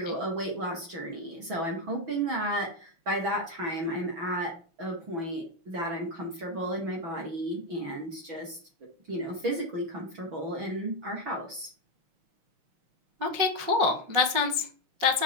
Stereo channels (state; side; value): late; left; 6.1 ms